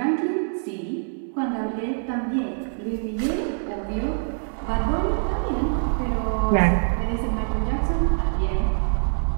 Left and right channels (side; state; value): left; silent; digital silence